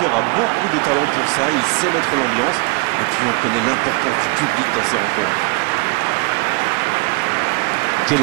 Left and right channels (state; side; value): quieter; left; 29.0 dB